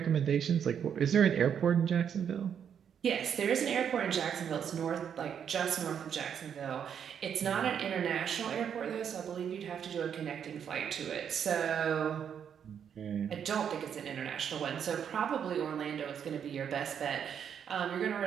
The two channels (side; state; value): left; quieter; 8.1 dB